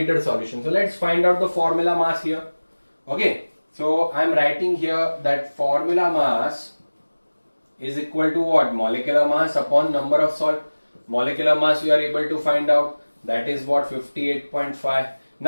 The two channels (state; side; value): inverted; both; correlation -1.00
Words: solution. So let's find out the formula mass here. Okay. So I am writing here that formula mass is equal to what? Molecular mass upon number of salt. Molecular mass we are able to find out. That is what? 58.5.